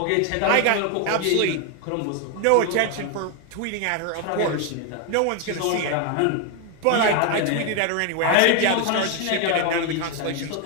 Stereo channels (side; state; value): both; different; correlation 0.01